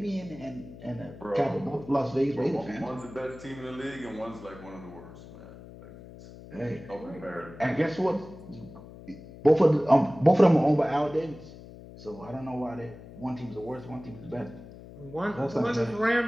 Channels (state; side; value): noise; left; hum, 17 dB below the sound